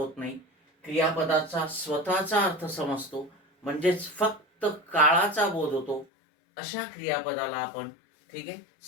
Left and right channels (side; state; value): right; drops out; at 6.1 s